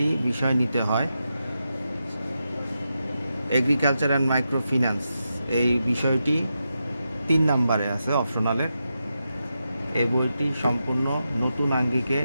বিষয় নিতে হয়। এগ্রিকালচার অ্যান্ড মাইক্রো ফিন্যান্স এই বিষয়টি ৩ নম্বরে আছে অপশনালে। এই বইটি সম্পূর্ণ নতুন আঙ্গিকে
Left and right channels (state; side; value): inverted; both; correlation -0.87